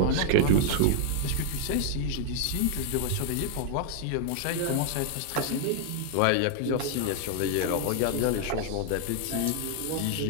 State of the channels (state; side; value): different; both; correlation 0.00